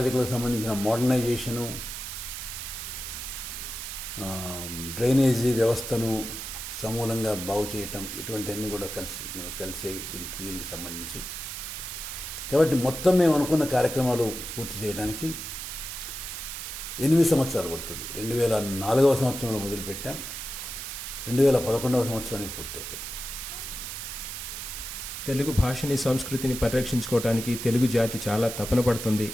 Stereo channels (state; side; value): noise; right; hiss, 7 dB below the sound